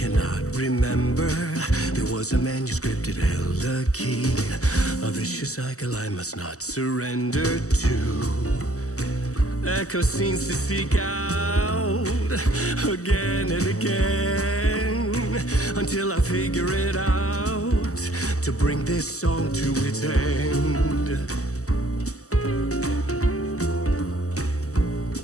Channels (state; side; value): late; right; 0.66 ms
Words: remember. There was a manuscript, it held a key. A vicious cycle I must not surrender to. Echo scenes to seek out again and again until I figure it out to bring this song to its end.